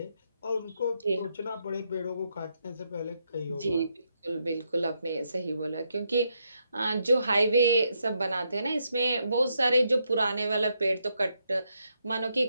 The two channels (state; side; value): inverted; both; correlation -0.79